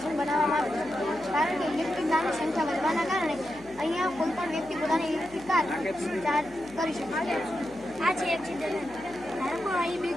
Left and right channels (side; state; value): left; noise; hum, 21 dB below the sound